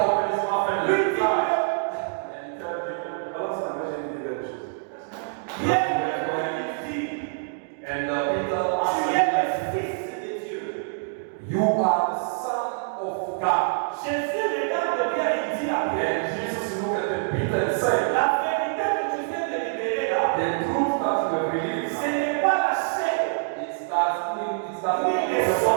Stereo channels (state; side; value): silent; left; digital silence